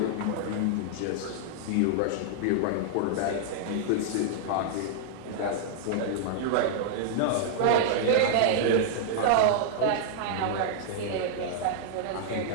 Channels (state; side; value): different; both; correlation -0.01